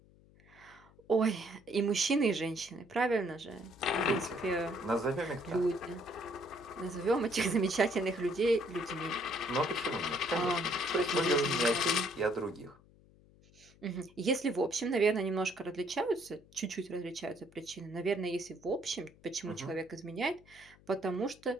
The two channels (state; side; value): noise; left; hum, 27 dB below the sound